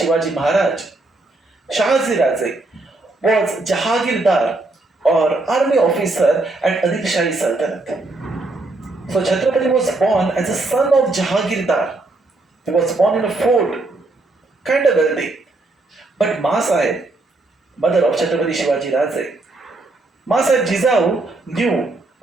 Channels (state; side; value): quieter; left; 3.0 dB